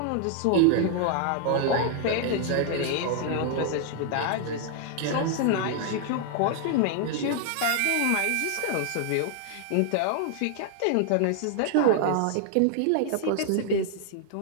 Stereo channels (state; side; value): different; both; correlation 0.00